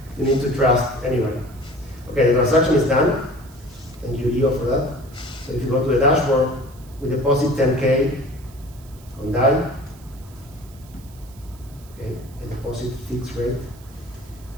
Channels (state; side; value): noise; right; hiss, 25 dB below the sound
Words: You need to trust anybody. Okay, the transaction is done. Thank you, Leo, for that. So if you go to the dashboard, we deposit 10K on DAI. Okay, a deposit fixed rate.